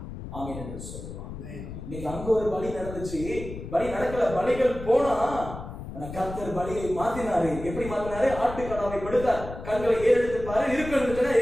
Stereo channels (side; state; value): left; noise; rumble, 10 dB below the sound